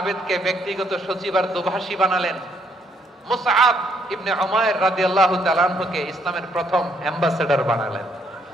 ব্যক্তিগত সচিব আর দোভাষী বানালেন, মুসআব ইবনে উমাইর রাদিয়াল্লাহু তাআলা আনহুকে ইসলামের প্রথম অ্যাম্বাসেডর বানালেন।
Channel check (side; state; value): both; normal; correlation 0.70